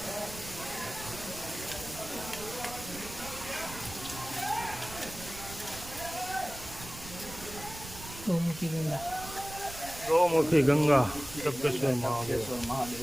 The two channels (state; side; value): noise; right; rumble, 14 dB below the sound